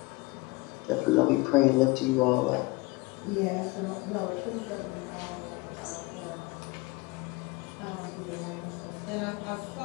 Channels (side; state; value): right; quieter; 23.2 dB